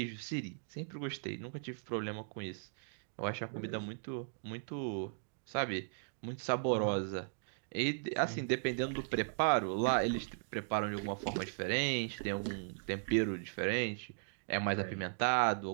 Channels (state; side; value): silent; left; digital silence